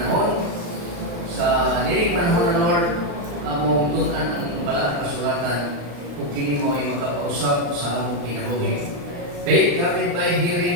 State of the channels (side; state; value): left; late; 35 ms